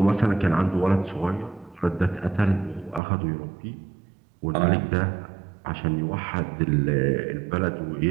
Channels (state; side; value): drops out; left; at 3.0 s